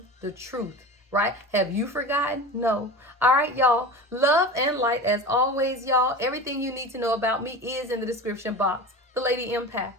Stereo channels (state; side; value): normal; both; correlation 0.31